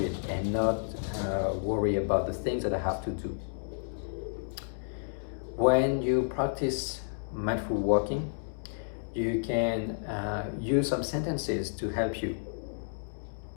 and not worry about the things that I have to do. When you practice mindful walking, you can use some sentences to help you.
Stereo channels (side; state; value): right; silent; digital silence